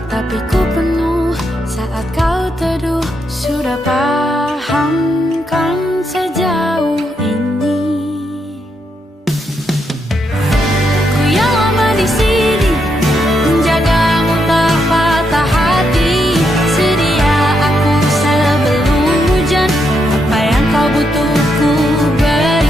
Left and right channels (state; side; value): normal; both; correlation 0.80